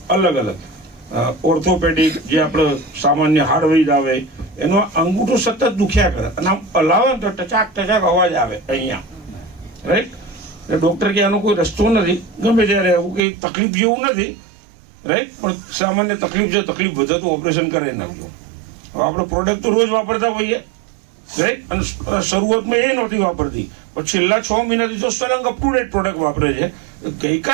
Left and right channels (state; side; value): drops out; left; at 13.2 s